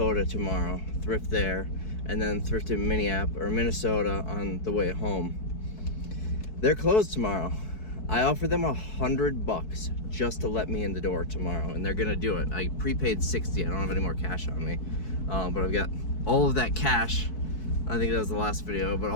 tomorrow, thrift there, and then thrift in Minnesota on the way home. They're closed tomorrow. I offered them $100 just to let me in the door tomorrow, and they're gonna do it. I prepaid 60. I don't have any more cash on me, but I've got all of that cash. I think that was the last video, but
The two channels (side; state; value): right; late; 4.6 ms